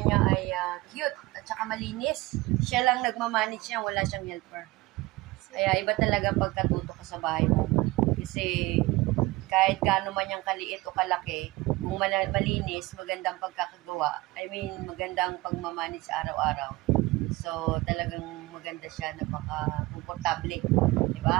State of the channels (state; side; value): quieter; left; 20.7 dB